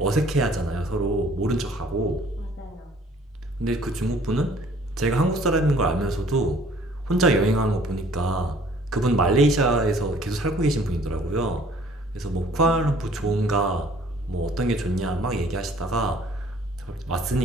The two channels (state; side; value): normal; both; correlation 0.56